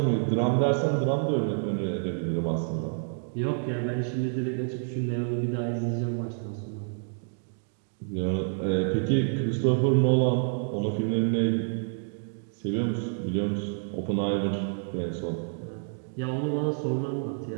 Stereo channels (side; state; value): left; silent; digital silence